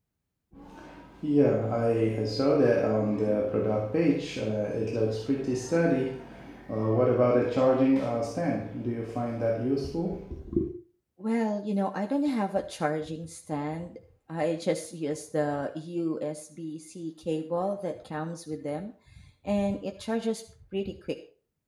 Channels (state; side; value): identical; both; correlation 1.00